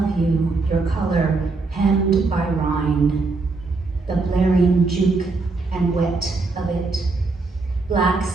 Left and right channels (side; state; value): left; quieter; 3.7 dB